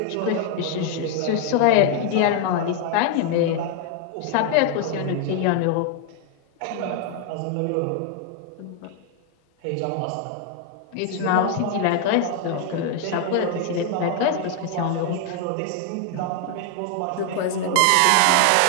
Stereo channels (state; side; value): different; both; correlation 0.00